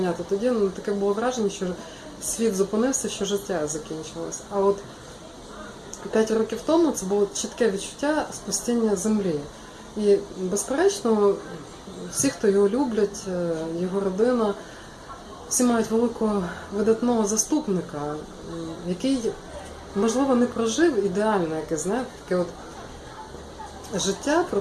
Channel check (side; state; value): both; identical; correlation 1.00